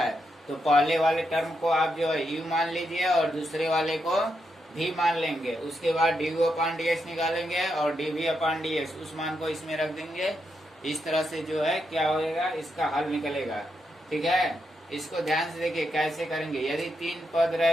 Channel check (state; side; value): normal; both; correlation 0.82